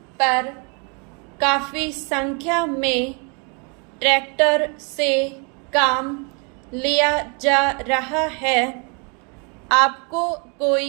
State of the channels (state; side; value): quieter; left; 34.8 dB